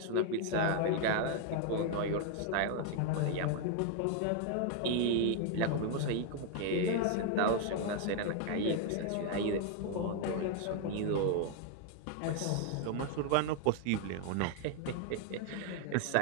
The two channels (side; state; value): both; different; correlation 0.00